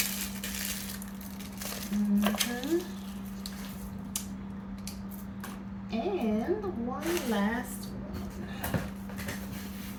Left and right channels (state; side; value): identical; both; correlation 1.00